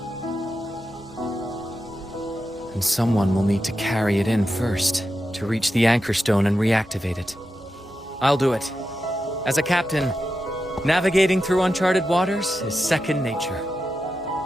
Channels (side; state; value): both; normal; correlation 0.89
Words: And someone will need to carry it in first, to reach the anchor stone and reactivate it. I'll do it. As a captain, navigating through uncharted waters is second nature.